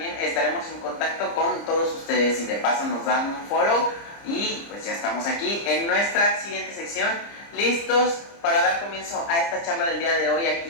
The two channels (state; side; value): late; right; 30 ms